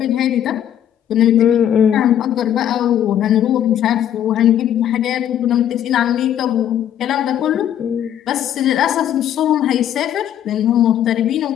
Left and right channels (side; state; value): right; quieter; 10.5 dB